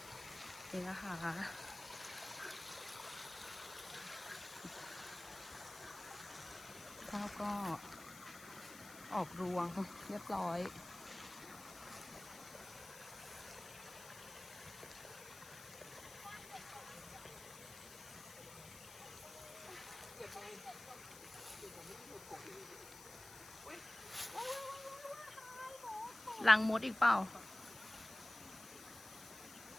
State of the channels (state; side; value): noise; left; hiss, 15 dB below the sound